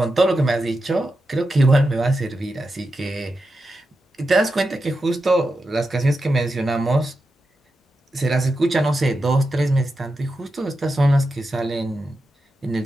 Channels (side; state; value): both; normal; correlation 0.89